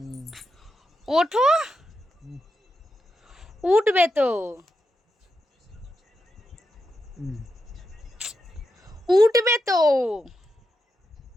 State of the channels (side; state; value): both; normal; correlation 0.86